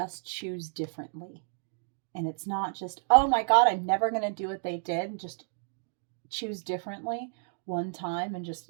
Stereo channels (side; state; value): left; silent; digital silence